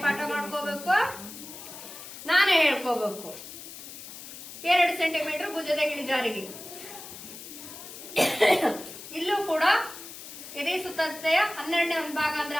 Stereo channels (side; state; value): left; noise; hiss, 13 dB below the sound